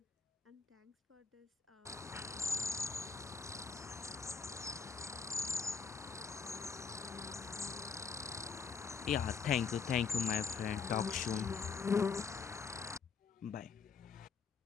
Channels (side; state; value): right; quieter; 5.6 dB